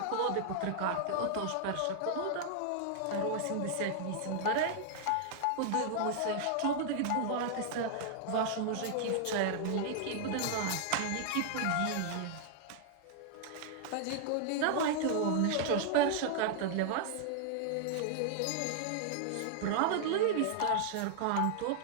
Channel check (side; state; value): both; different; correlation -0.01